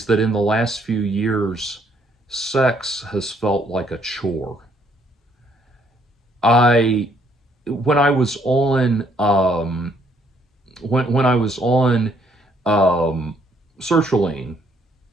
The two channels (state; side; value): normal; both; correlation 0.68